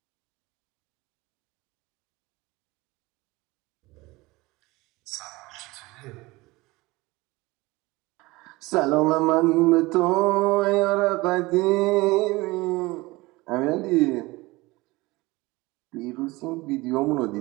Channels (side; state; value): left; quieter; 21.7 dB